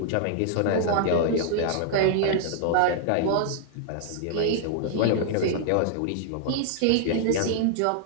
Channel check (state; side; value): different; both; correlation -0.01